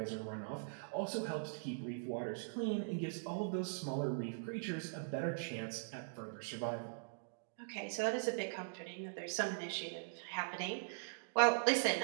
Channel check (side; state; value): left; silent; digital silence